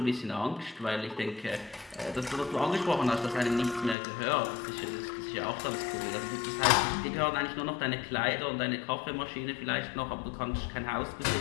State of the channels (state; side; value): drops out; right; at 4.0 s